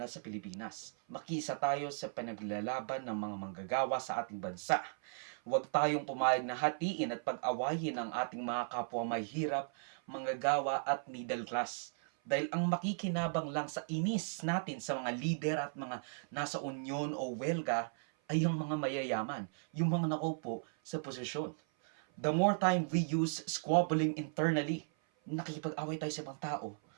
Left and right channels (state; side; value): silent; left; 53 dB below the other